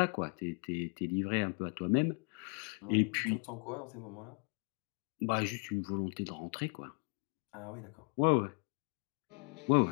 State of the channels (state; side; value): quieter; right; 39.3 dB